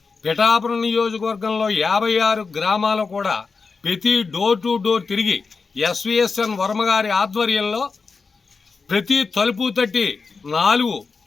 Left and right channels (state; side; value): quieter; right; 4.7 dB